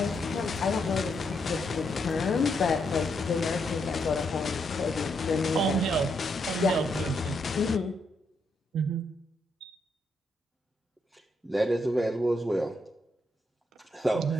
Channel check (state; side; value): normal; both; correlation 0.78